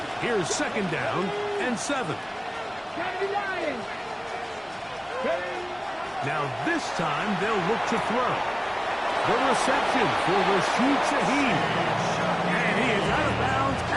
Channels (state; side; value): identical; both; correlation 1.00